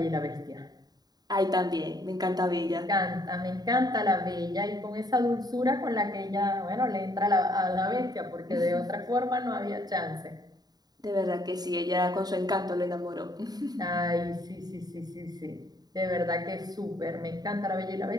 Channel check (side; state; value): left; late; 0.19 ms